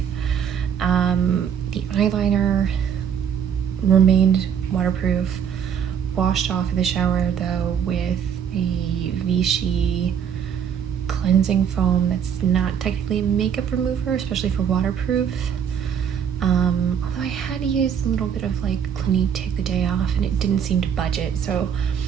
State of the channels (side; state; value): left; quieter; 8.1 dB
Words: The eyeliner remained waterproof, washed off in the shower though with a Vichy cleansing foam that's not technically a makeup remover, especially for waterproof. Although I had to use a little bit of like Clinique Take the Day Off and it didn't seem to budget, so